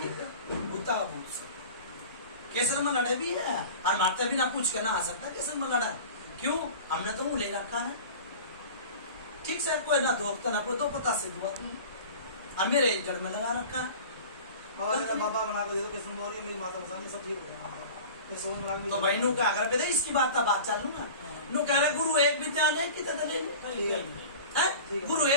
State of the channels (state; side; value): inverted; both; correlation -0.38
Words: है भूता का भूत सब केसर में लड़े भी है और मारते भी ना पूछ के ना आ सकता केसर में लड़ा है क्यों हमने तो मुंह ले रखा है ठीक सर कोई ना दोखता ना कोई दो पता से दुआ और मेरे जड़ में लगा रखा है बाबा बना कर दे दो किस्म बोली मेरी माता मसानी सब ठीक हो जाएगा तो भाई नु का अगर पे इसकी बात चालू ना नु कह रहे गुरु एक विद्या ने कितने दले है गुरु